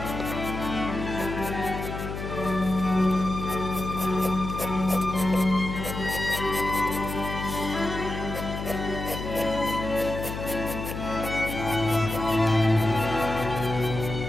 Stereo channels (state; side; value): noise; left; hum, 6 dB below the sound